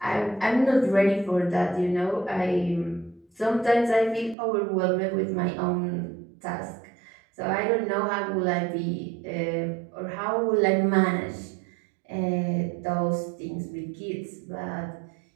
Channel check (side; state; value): left; drops out; at 4.4 s